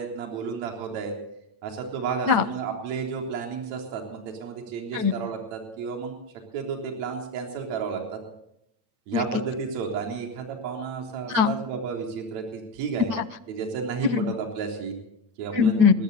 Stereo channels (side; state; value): left; late; 8.9 ms